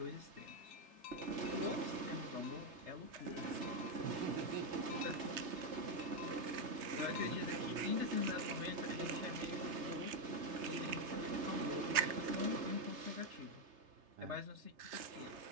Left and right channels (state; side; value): late; left; 3.3 ms